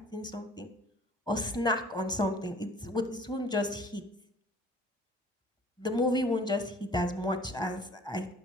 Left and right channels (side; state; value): both; normal; correlation 0.51